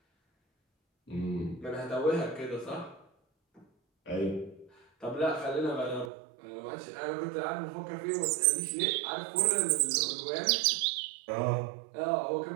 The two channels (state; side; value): drops out; left; at 6.1 s